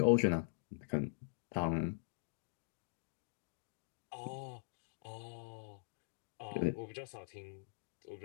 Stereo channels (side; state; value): right; silent; digital silence